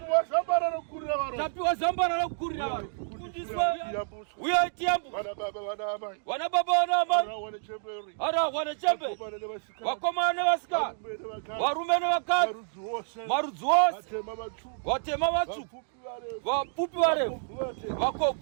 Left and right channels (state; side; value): silent; left; digital silence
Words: zambara rekukurira varoyi. Tapiwa zambara rekukurira varoyi. Kufundiswa. Uyai tiyambuswe. Vana baba vana amai. Vana baba vana amai. Wane chemberi. Wane chembe. Vakomana nevasikana. Varume nevakadzi. Marudzi ose. Vatema vatsvuku. Vapfupi varefu.